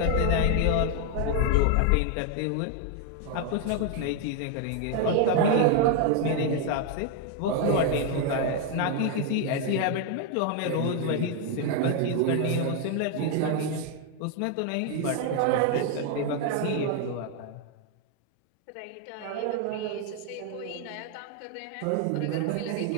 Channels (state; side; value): different; both; correlation 0.00